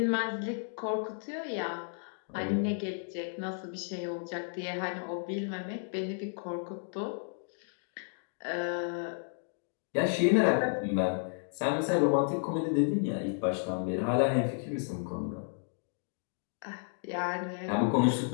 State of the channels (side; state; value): right; silent; digital silence